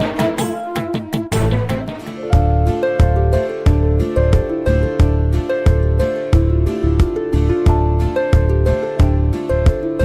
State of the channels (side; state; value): both; identical; correlation 1.00